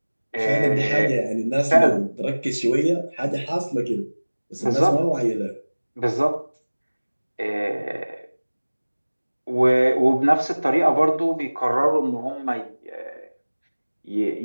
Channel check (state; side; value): inverted; both; correlation -1.00